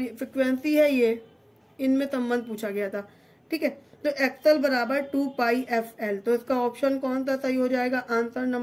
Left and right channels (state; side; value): identical; both; correlation 1.00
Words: फ्रिक्वेंसी है ये, इनमें संबंध पूछा गया था। ठीक है, तो एक्सएल बराबर 2 पाई एफ एल। तो इसका ऑप्शन कौन सा सही हो जाएगा, आंसर